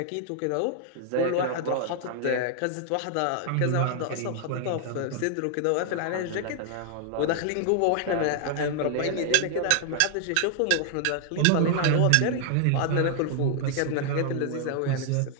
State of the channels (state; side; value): different; both; correlation 0.00